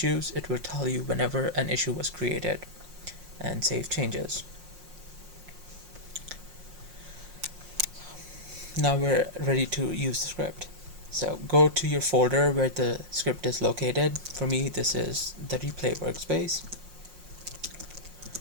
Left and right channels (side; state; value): left; late; 5.6 ms